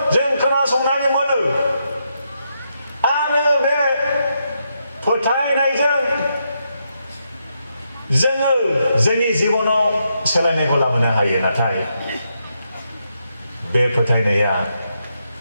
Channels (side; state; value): both; inverted; correlation -0.81